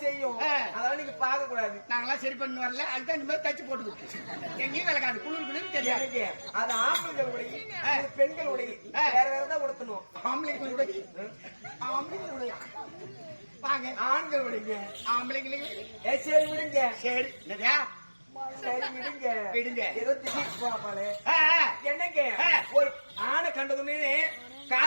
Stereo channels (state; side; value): inverted; both; correlation -1.00